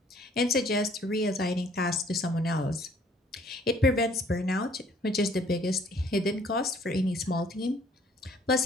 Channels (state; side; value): normal; both; correlation 0.59